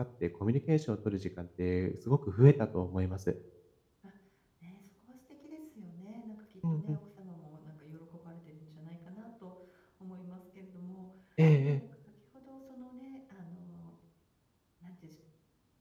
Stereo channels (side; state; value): both; identical; correlation 1.00